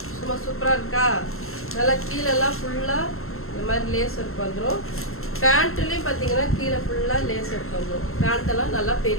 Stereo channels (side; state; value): right; late; 0.62 ms